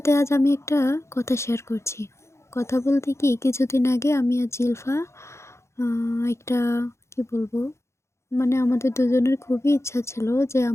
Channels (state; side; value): late; right; 0.13 ms